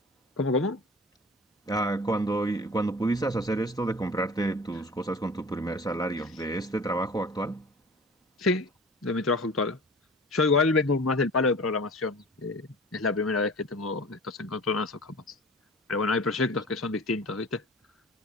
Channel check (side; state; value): both; normal; correlation 0.40